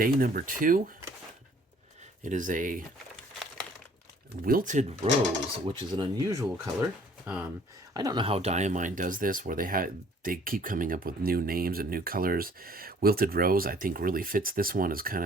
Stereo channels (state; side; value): normal; both; correlation 0.57